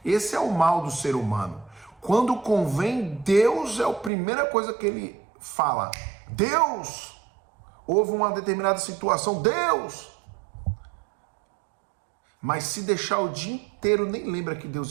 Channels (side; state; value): left; drops out; at 4.1 s